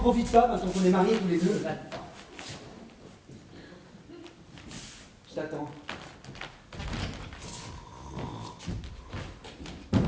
pas maintenant qu'on est mariés tous les deux? Va-t'en. Je t'attends.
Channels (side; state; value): both; identical; correlation 1.00